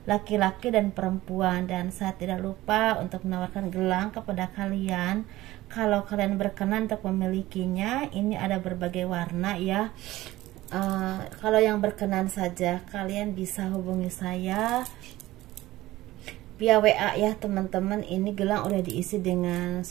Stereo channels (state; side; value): quieter; left; 17.0 dB